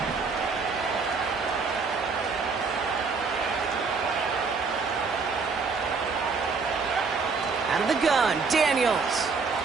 Out of the gun, Daniels.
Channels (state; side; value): quieter; left; 4.8 dB